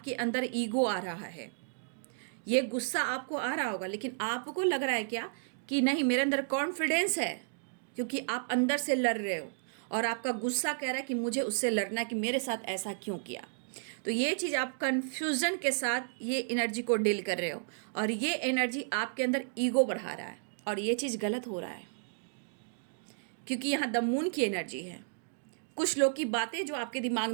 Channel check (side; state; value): left; silent; digital silence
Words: अंदर ईगो आ रहा है। ये गुस्सा आपको आ रहा होगा, लेकिन आपको लग रहा है क्या कि नहीं, मेरे अंदर कॉन्फिडेंस है, क्योंकि आप अंदर से लड़ रहे हो और आपका गुस्सा कह रहा है कि मुझे उससे लड़ना है, कि मेरे साथ ऐसा क्यों किया। तो ये चीज़ आप कन्फ्यूज़न के साथ ये एनर्जी को डील कर रहे हो, और ये एनर्जी आपके अंदर ईगो बढ़ा रहा है, और ये चीज़ गलत हो रहा है, क्योंकि यहाँ द मून की एनर्जी है। कुछ लोग की बातें जो आपके दिमाग